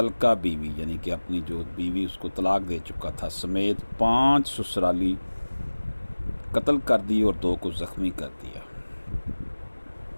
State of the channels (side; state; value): both; inverted; correlation -1.00